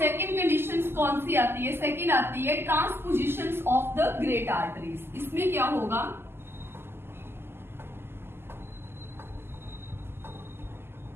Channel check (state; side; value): late; left; 0.12 ms